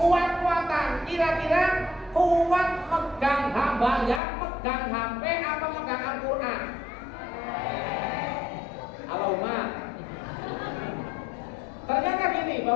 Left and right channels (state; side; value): drops out; right; at 4.2 s